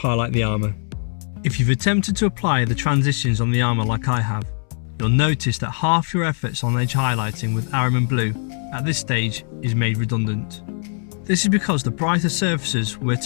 the armour. If you've attempted to apply the transitions on the armour like I have, you'll notice that half your efforts on edge highlighting with Ahriman Blue at this stage is made redundant. This is because the brighter surfaces were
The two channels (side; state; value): right; silent; 65 dB below the other